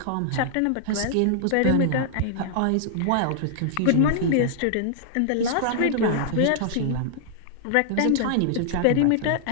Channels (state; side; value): different; both; correlation -0.01